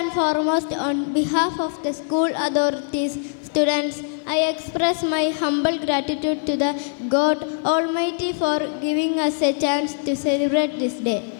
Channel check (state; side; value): silent; right; 64 dB below the other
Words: foremost, on behalf of the school authorities, students, I express my humble gratitude to the God Almighty for giving us a chance to celebrate this day.